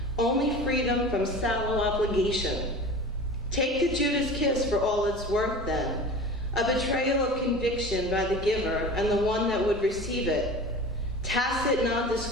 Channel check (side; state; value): both; normal; correlation 0.36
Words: only freedom from sallow obligation. Take the Judas kiss for all it's worth then, a betrayal of conviction by the giver and the one that would receive it. Tacit